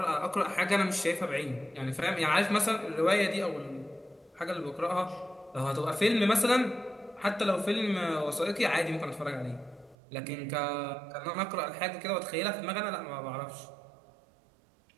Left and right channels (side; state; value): left; drops out; at 10.0 s